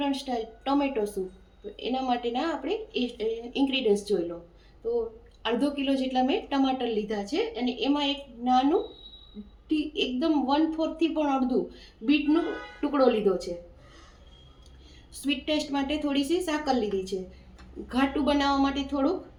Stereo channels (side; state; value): both; identical; correlation 1.00